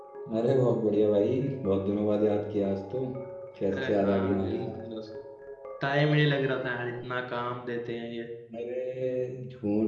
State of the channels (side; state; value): both; identical; correlation 1.00